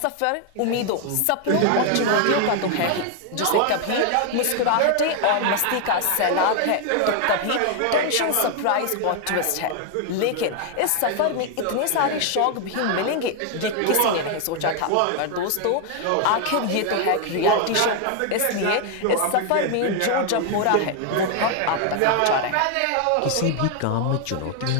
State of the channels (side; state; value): both; different; correlation 0.00